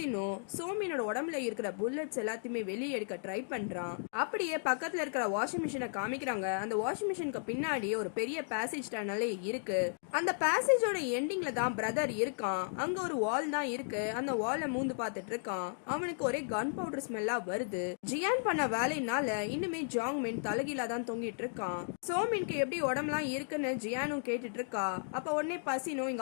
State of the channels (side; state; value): right; silent; digital silence